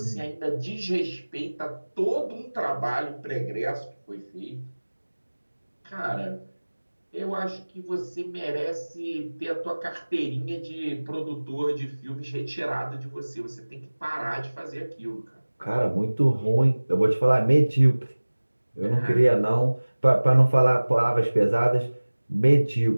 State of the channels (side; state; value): both; inverted; correlation -1.00